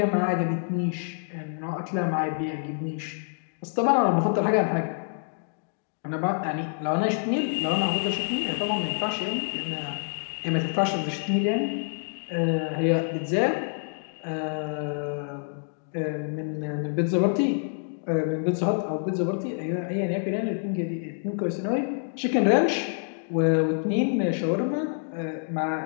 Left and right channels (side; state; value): right; silent; digital silence